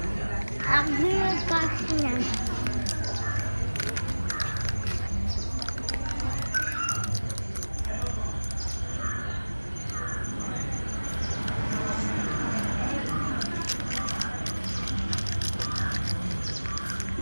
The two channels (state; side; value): inverted; both; correlation -1.00